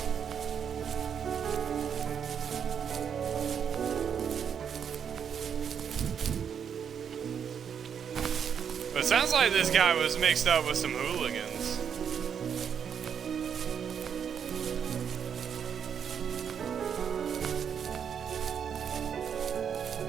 But it sounds like this guy was mixed up with some hooligans.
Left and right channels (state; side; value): quieter; left; 7.7 dB